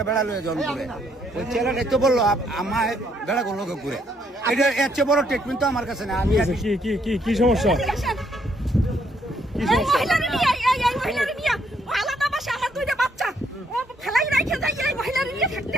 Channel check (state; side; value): normal; both; correlation 0.71